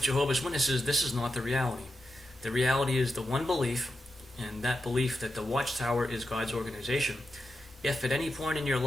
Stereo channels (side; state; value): both; normal; correlation 0.89